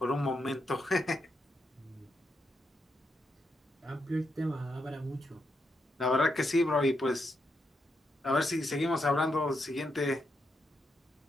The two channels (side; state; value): both; normal; correlation 0.82